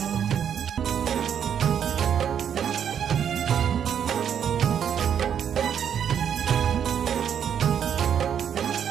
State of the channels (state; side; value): quieter; left; 8.6 dB